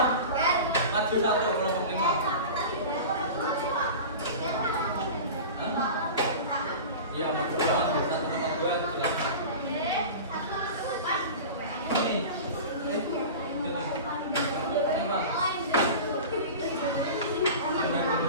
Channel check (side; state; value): both; inverted; correlation -0.33